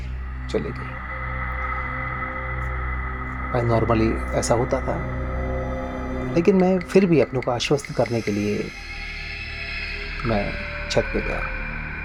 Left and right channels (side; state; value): both; identical; correlation 1.00